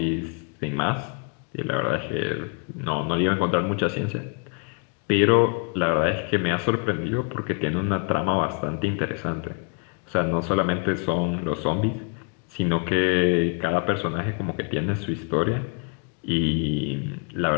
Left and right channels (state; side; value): quieter; right; 35.4 dB